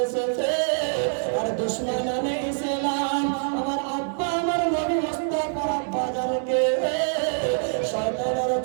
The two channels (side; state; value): left; silent; 62 dB below the other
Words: এসেছে। আর দুশমনানে ইসলাম আমার আব্বা আমার নবী মুস্তাফার আব্বা জানকে শয়তানের